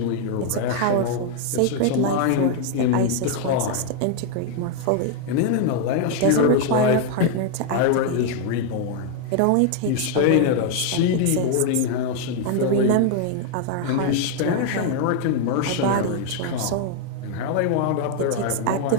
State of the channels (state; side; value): different; both; correlation 0.00